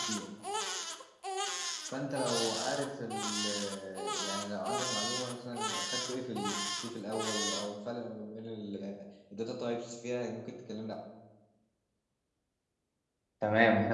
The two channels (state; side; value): identical; both; correlation 1.00